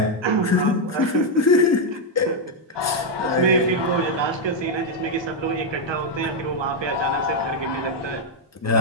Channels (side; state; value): both; normal; correlation 0.00